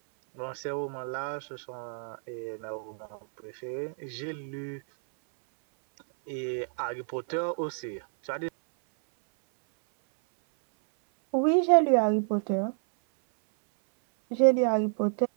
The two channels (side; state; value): left; silent; 58 dB below the other